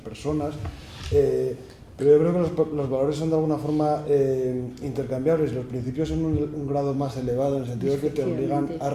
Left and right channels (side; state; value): both; identical; correlation 1.00